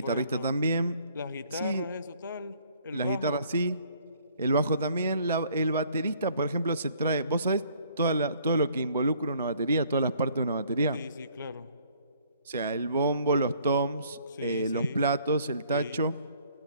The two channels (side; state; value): both; inverted; correlation -0.61